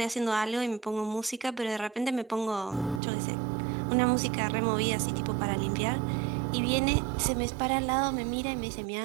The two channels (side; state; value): left; drops out; at 3.0 s